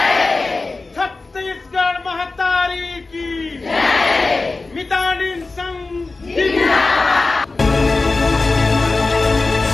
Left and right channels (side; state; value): right; quieter; 3.6 dB